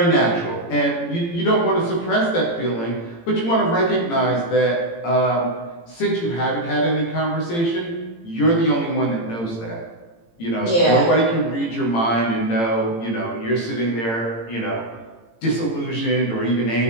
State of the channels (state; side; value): late; right; 18 ms